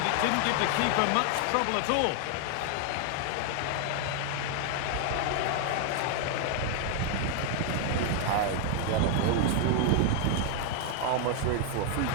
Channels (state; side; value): different; both; correlation 0.00